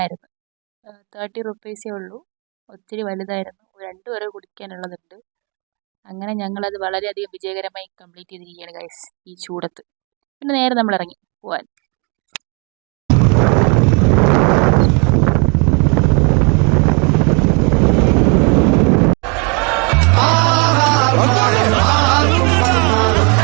30 റുപ്പീസേ ഉള്ളൂ. ഒത്തിരി വലുതായിരുന്നു. 2 പേരെ കുടിക്കാനുള്ളതുണ്ട്. അങ്ങനെ ഞങ്ങളത് വളരെയധികം വിജയകരമായി കംപ്ലീറ്റ് ചെയ്തിരിക്കുകയാണ് ഗൈസ് ഈ ചൂടത്ത്. പിന്നെ നേരെ നമ്മൾ ഇറങ്ങി പോവാൻ.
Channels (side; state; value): left; quieter; 33.2 dB